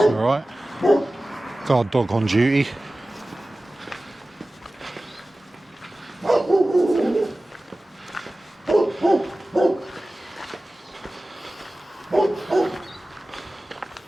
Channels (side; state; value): both; normal; correlation 0.97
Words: alright. Guard dog on duty.